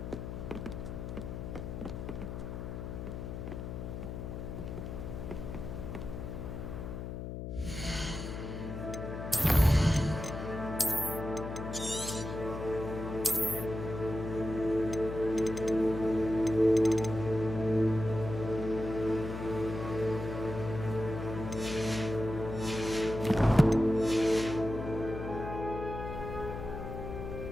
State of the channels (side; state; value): left; noise; hum, 6 dB below the sound